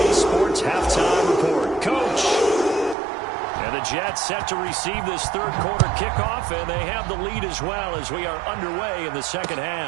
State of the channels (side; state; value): left; drops out; at 3.0 s